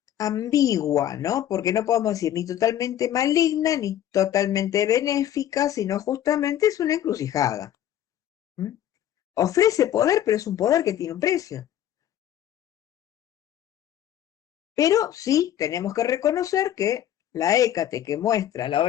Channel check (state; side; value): quieter; right; 11.4 dB